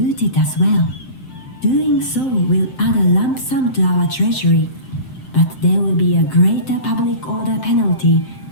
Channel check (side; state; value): right; late; 7.7 ms